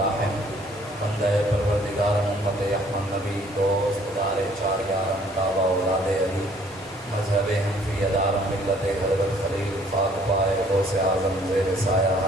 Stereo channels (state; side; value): normal; both; correlation 0.59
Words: بندہ پروردگار امت احمد نبی دوست دار چار یارم تابع اولاد علی مذہب حنفی ادار ملت حضرت خلیل فاق پائے غوث اعظم زیر سایہ